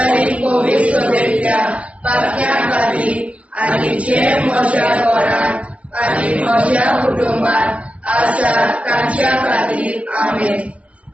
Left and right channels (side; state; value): left; late; 0.065 ms